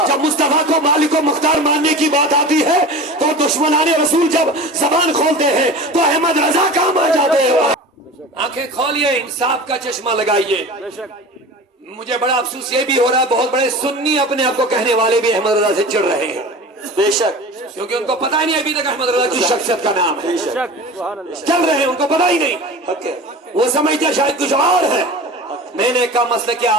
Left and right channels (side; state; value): both; normal; correlation 0.35